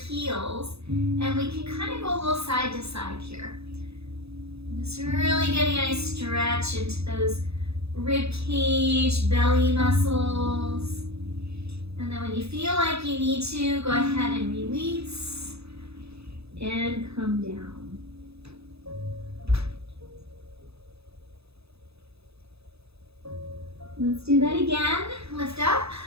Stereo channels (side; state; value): left; late; 0.79 ms